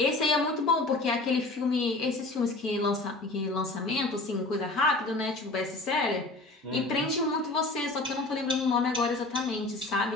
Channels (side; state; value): right; quieter; 3.0 dB